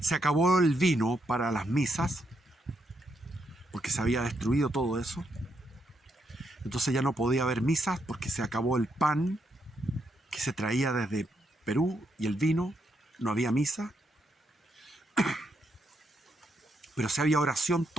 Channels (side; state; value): both; normal; correlation 0.79